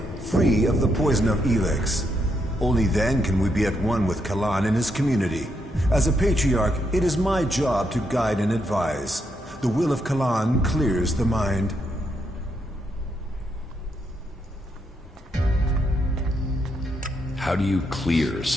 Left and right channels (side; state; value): both; normal; correlation 0.79